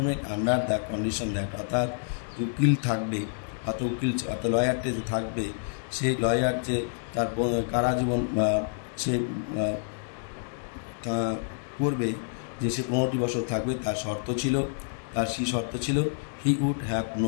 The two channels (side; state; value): right; silent; digital silence